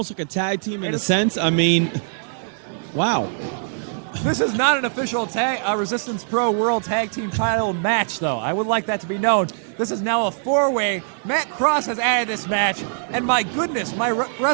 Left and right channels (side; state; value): left; silent; 64 dB below the other